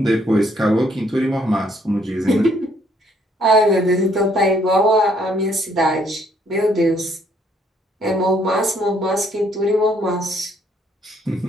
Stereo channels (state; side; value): normal; both; correlation 0.67